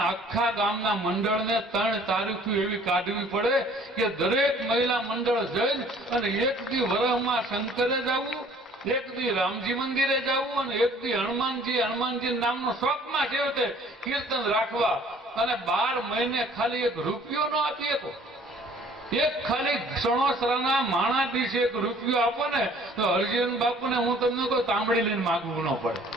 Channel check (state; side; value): normal; both; correlation 0.55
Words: આખા ગામના મંડળને 3 તારીખો એવી કાઢવી પડે કે દરેક મહિલા મંડળ જઈ અને એક દી વરહમાં શંકરે જવું, એક દી રામજી મંદિરે જવું અને એક દી હનુમાનજી નામનો શોખમાં છે તે કીર્તન રાખવા. અને 12 મહિને ખાલી 1 રૂપિયો ન આપી શકો, એક ખાલી સણોસરાના માણા દિવસે 1 રૂપિયો આપો ને તો હરજીવન બાપુને હું તમને કહું તાંબડી લઈને માગવું ન પડે.